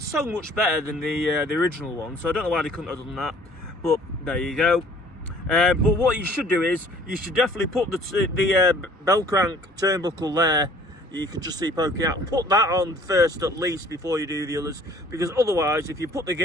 so much better than the original one, so I don't know why they couldn't have done that, but there you go. But what you should do is, you should definitely put the bell crank turnbuckle there. You can just see poking out. Put that on first at least before you do the others, because otherwise, if you put the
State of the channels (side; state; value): both; normal; correlation 0.54